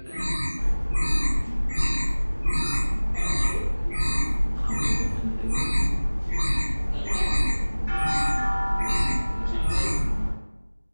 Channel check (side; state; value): both; inverted; correlation -1.00